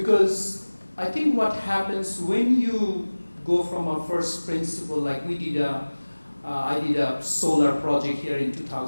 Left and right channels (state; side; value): inverted; both; correlation -1.00